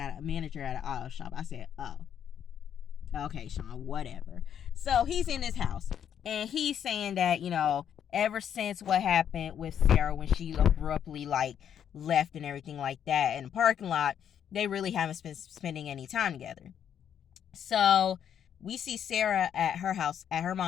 a manager at an auto shop. I said, oh. Okay, Sean, whatever. So he's in his house. And he's saying that, ever since what happened with Sarah when she abruptly, left and everything like that in the parking lot, they really haven't been spending any time together. So we see Sarah at her house, at her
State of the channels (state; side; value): quieter; right; 9.0 dB